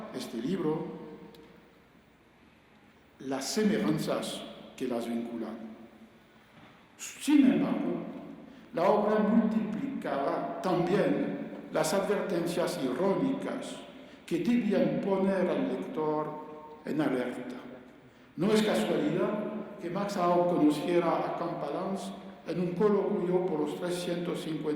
este libro las semejanzas que las vinculan. Sin embargo, la obra multiplicaba también las advertencias irónicas que debían poner al lector en alerta. No es casualidad que Max Aub conociera a Campalans en un coloquio por los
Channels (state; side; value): identical; both; correlation 1.00